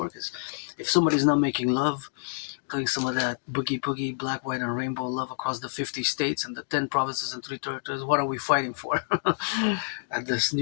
Because if somebody's not making love, doing some of that boogie, black, white, and rainbow love across the 50 states and the 10 provinces and 3 territories, what are we fighting for? At this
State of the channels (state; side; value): silent; right; digital silence